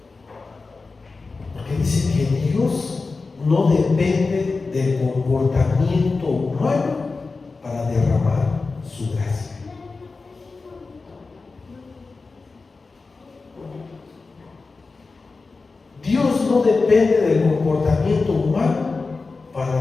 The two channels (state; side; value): quieter; right; 4.0 dB